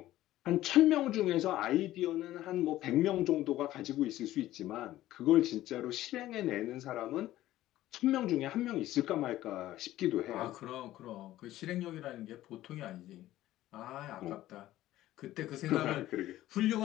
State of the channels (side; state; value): right; quieter; 14.8 dB